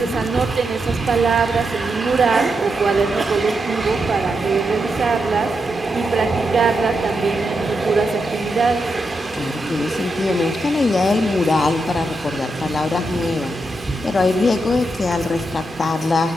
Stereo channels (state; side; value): normal; both; correlation 0.84